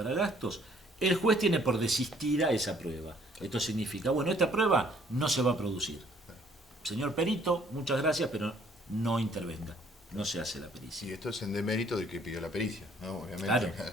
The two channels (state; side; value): normal; both; correlation 0.61